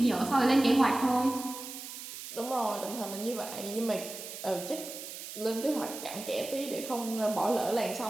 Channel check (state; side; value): noise; right; hiss, 10 dB below the sound